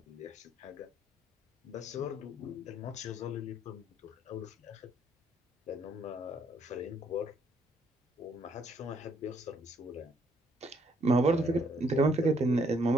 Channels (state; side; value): normal; both; correlation 0.68